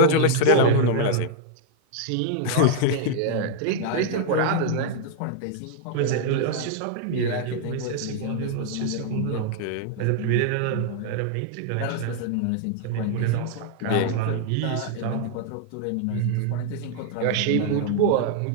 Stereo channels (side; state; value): both; different; correlation 0.00